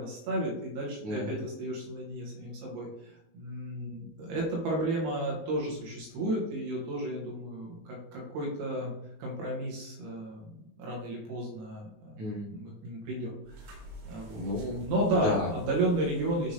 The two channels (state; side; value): late; left; 19 ms